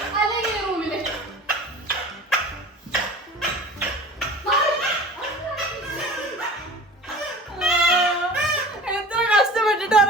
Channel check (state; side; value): normal; both; correlation 0.40